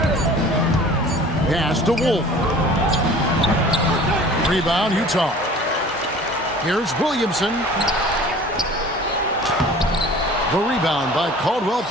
Pass to Wolf. Rebound, Utah. Here's Williamson. The rebound by Caldwell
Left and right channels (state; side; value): normal; both; correlation 0.45